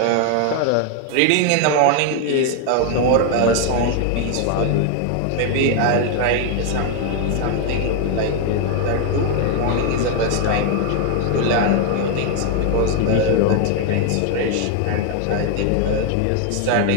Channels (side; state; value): both; different; correlation 0.00